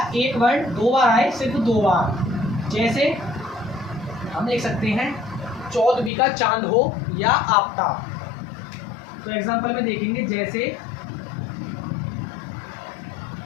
एक वर्ण 2 बार आए, सिर्फ 2 बार। जैसे हम देख सकते हैं 14वीं का चांद हो या आफताब। तो एग्जांपल में देखेंगे, जैसे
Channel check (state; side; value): drops out; right; at 6.1 s